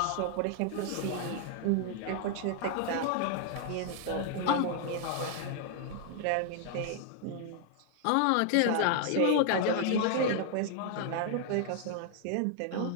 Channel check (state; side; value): different; both; correlation 0.00